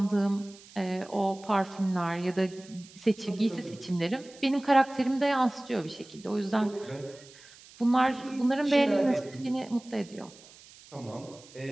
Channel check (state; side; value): noise; right; hiss, 22 dB below the sound